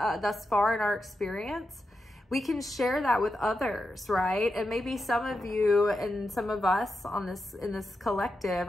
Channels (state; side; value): normal; both; correlation 0.88